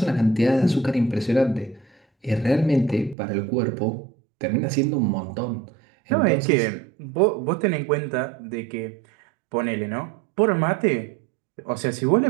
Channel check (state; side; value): drops out; left; at 3.2 s